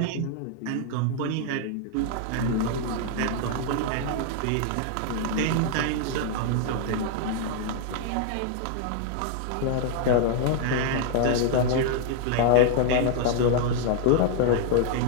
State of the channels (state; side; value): different; both; correlation -0.01